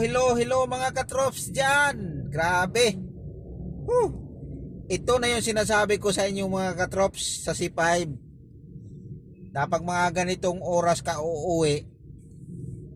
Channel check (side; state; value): both; identical; correlation 1.00